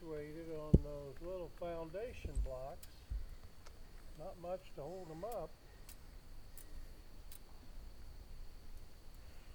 on those little foundation blocks. Not much to hold them up.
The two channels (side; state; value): both; identical; correlation 1.00